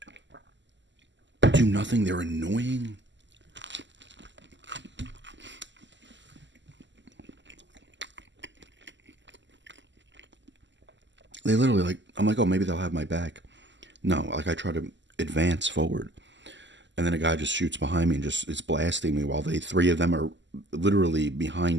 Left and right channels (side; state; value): left; late; 0.53 ms